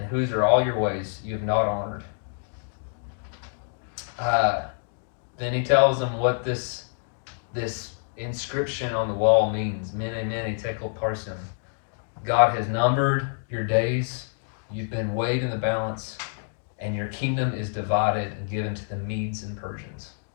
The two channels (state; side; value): silent; right; digital silence